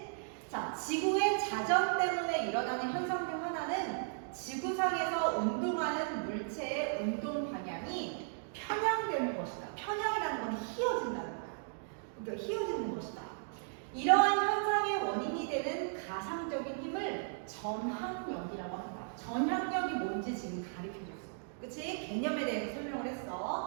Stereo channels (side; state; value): left; silent; digital silence